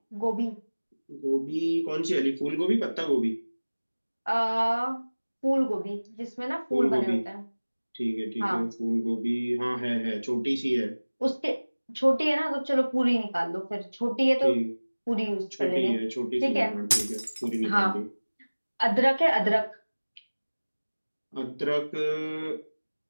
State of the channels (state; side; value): inverted; both; correlation -1.00